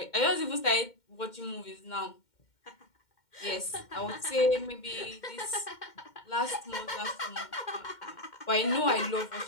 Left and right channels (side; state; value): right; late; 2.1 ms